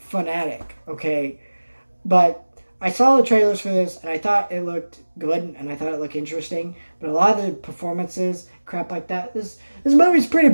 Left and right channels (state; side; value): inverted; both; correlation -1.00